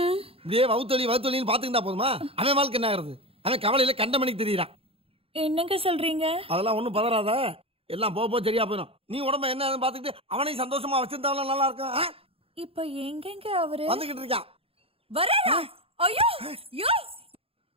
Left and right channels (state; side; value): late; left; 0.27 ms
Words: இப்படியே வவுத்தொலின்னு பாத்துக்கிட்டா போதுமா? அவன் வாழ்க்கை என்ன ஆகுறது? அவன் கவலையில கண்ட மணிக்கு தெரியுறான். என்னங்க சொல்றீங்க? அதெல்லாம் ஒண்ணும் பதறாத, எல்லாம் போக சரியா போயிடும். நீ உடம்ப என்ன பாத்துக்கிட்டு அவனையும் சந்தோஷமா வச்சிருந்தாலும் நல்லா இருக்கும். இப்ப எங்கங்க அவரு வந்துகிட்டு இருக்கான். வரா? ஐயோ யோ